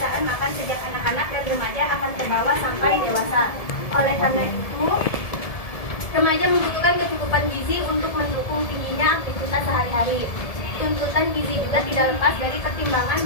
makan sejak anak-anak dan remaja akan terbawa sampai dewasa. Oleh karena itu, remaja membutuhkan kecukupan gizi untuk mendukung tingginya aktivitas sehari-hari. Tuntutan gizi juga tidak lepas dari pertimbangan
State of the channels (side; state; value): right; late; 1.7 ms